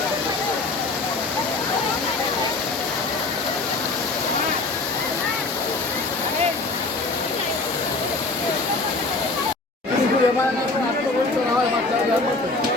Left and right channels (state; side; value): quieter; right; 3.4 dB